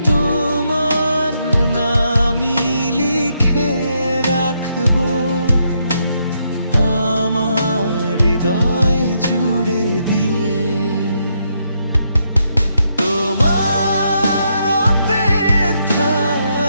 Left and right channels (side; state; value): both; inverted; correlation -0.78